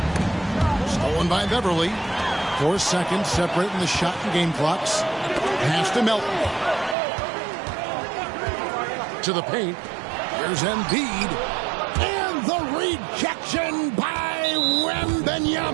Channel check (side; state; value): left; drops out; at 7.0 s